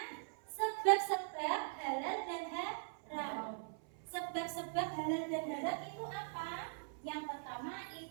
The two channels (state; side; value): silent; left; 50 dB below the other